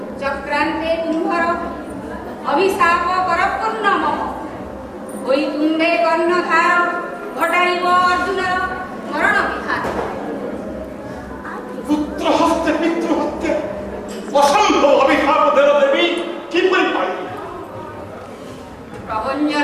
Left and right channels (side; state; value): both; identical; correlation 1.00